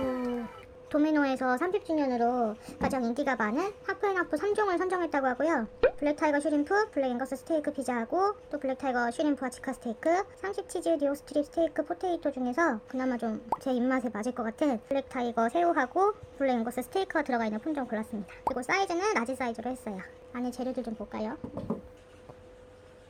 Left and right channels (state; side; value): identical; both; correlation 1.00